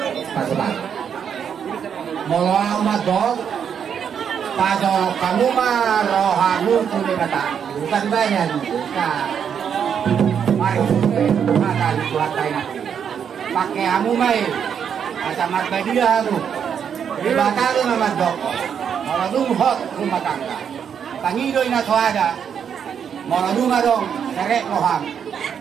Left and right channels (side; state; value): left; quieter; 7.8 dB